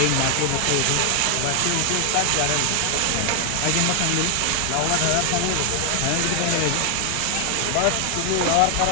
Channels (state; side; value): different; both; correlation 0.00